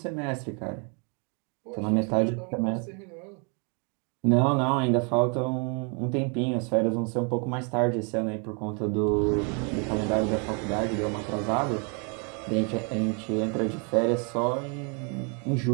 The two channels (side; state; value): left; quieter; 36.2 dB